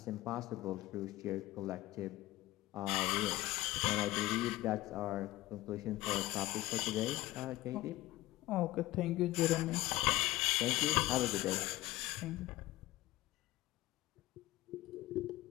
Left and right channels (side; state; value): right; quieter; 17.4 dB